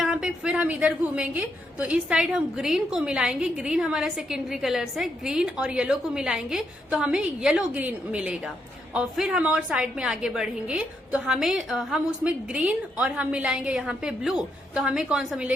पे फिर हम इधर घूमेंगे तो इस साइड हम ग्रीन को मिलाएंगे, ग्रीन हमारा सेकेंडरी कलर्स है, ग्रीन और येलो को मिलाएंगे तो हमें येलो ग्रीन मिलेगा। और फिर हम और साइड में आगे बढ़ेंगे तो हम उसमें ग्रीन और हम मिलाएंगे यहाँ पे ब्लू, तो हमें कौन सा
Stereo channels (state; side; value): normal; both; correlation 0.78